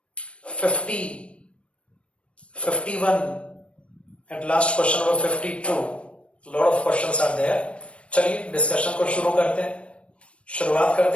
50, 51 and last question number 52। Lot of questions are there. चलिए डिस्कशन को शुरू करते हैं, शुरुआत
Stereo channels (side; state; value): right; late; 0.060 ms